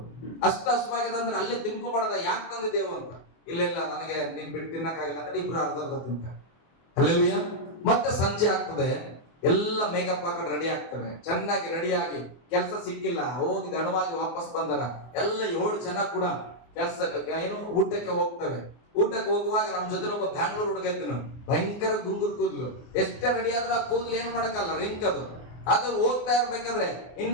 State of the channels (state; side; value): late; right; 24 ms